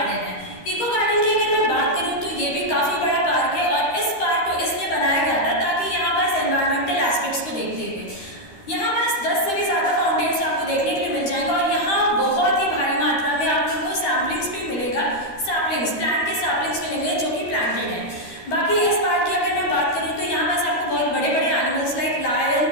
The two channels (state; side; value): late; right; 13 ms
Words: है। इको गार्डन की अगर मैं बात करूँ तो ये भी काफ़ी बड़ा पार्क है और इस पार्क को इसलिए बनाया गया था ताकि यहाँ पास एनवायरमेंटल एस्पेक्ट्स को देखते हुए यहाँ पास 10 से भी ज़्यादा फाउंटेन्स आपको देखने के लिए मिल जाएगा और यहाँ बहुत ही भारी मात्रा में आप लोगों को सैम्पलिंग्स भी मिलेगा। प्लांट के सैम्पलिंग्स मिलेंगे जो कि प्लांटेड है। बाकी इस पार्क की अगर मैं बात करूँ तो यहाँ पास आपको बहुत बड़े बड़े animals like lion,